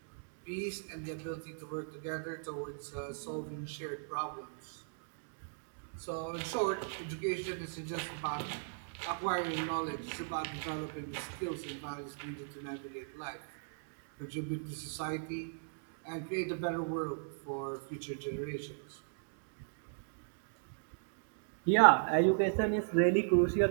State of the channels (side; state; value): left; silent; digital silence